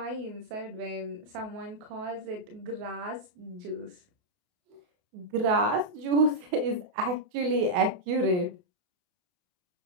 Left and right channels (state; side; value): late; left; 28 ms